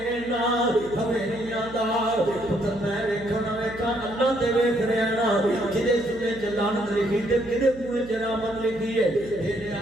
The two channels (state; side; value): noise; right; hum, 18 dB below the sound